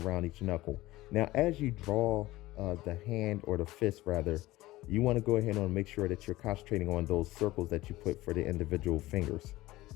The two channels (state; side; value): quieter; right; 17.9 dB